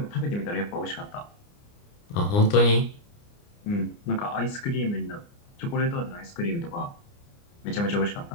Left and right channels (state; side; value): late; right; 29 ms